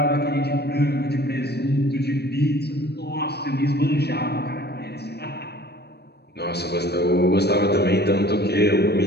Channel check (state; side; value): late; right; 0.47 ms